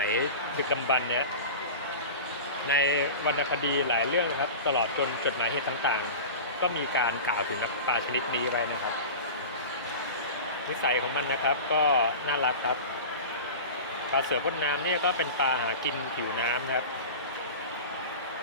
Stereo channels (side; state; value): both; inverted; correlation -0.32